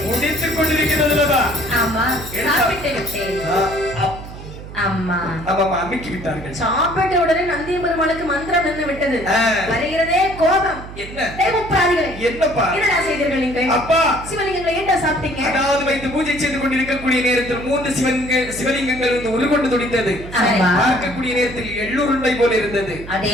முடித்துக் கொண்டிருக்கிறதுலவா? ஆமா சாப்பிட்டு விட்டேன். அம்மா ஆமாமா அமிக்கி விட்டார்கள். சாப்பிட்ட உடனே நந்திய பெருமாளுக்கு மந்திரம் நின்று விட்டது. வருகிறதே கோபம். என்ன தேவப்பிராதிகளே, என்னப்பா என்னடா செய்தீர்கள் நீங்கள்? அப்பா சிவலிங்கங்களை என்ன சாப்பிட்டீங்க? அதாவது வைத்து பூஜை செய்து கொண்டிருக்கக்கூடிய நேரத்தில் 3 சிவலிங்கங்கள் வந்து உருகொண்டு துடித்தது. பார்க்கக்கூடிய நேரத்தில் எள்ளுருண்டை போல இருந்தது.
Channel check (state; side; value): noise; right; hum, 13 dB below the sound